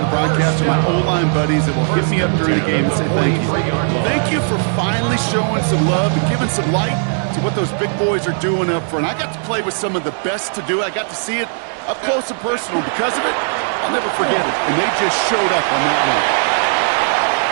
of the broadcast are my O-line buddies that will hit me up during the game and say thank you. Thank you for finally showing some love and giving some light to what those big boys are doing up front. I got to play with some of the best to do it. I got to see it up close and personal. Because of it, I'll never forget it. And they just showed up on that one.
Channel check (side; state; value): left; silent; 64 dB below the other